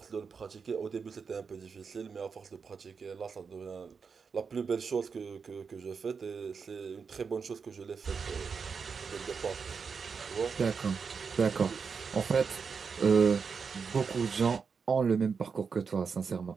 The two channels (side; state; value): left; quieter; 5.7 dB